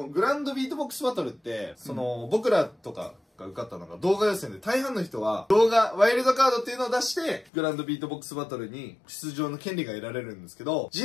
のグランドビートボックスバトルって、その、僕らとかが受かったのが動画予選で、大半の人は動画、ワイルドカードっていうのを出して、グランドビートボックスバトルに出場の権利が得られるんですけど、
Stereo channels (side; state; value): right; drops out; at 7.5 s